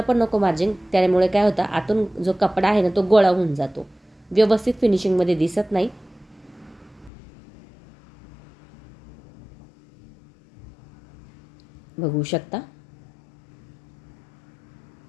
नको मार्जिन, त्यामुळे काय होतं आतून जो कपडा आहे ना तो गोळा होऊन जातो, व्यवस्थित फिनिशिंगमध्ये दिसत नाही. बघू शकता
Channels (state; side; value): drops out; right; at 7.1 s